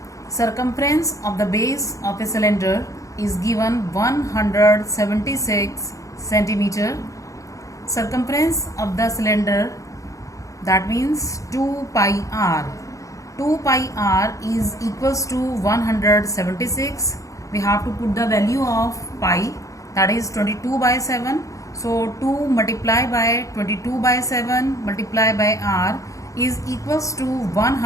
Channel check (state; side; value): late; right; 0.16 ms